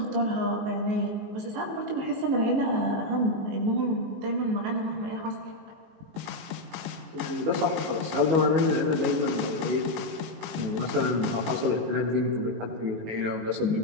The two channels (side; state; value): left; late; 19 ms